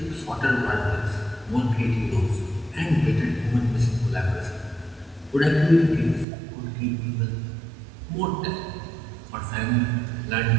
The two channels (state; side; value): drops out; left; at 6.2 s